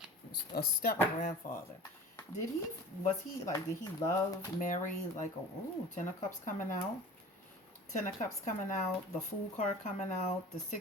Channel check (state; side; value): normal; both; correlation 0.39